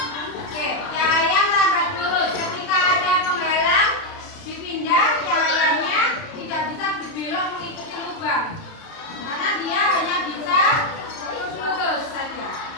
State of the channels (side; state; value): right; late; 30 ms